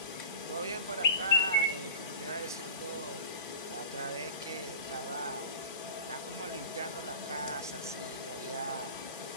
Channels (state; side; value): inverted; both; correlation -0.35